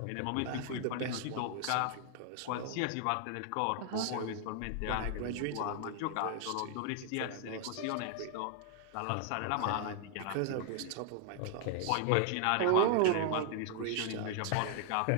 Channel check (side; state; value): both; different; correlation 0.00